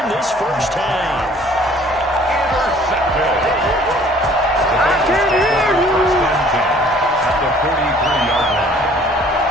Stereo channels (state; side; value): normal; both; correlation 0.55